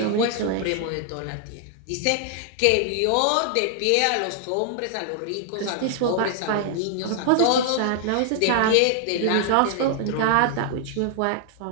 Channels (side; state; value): both; different; correlation 0.00